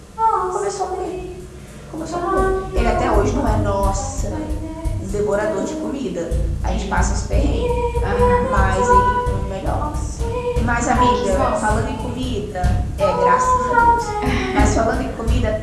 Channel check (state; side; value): identical; both; correlation 1.00